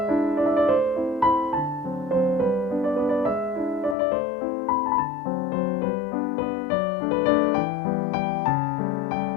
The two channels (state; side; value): drops out; right; at 4.0 s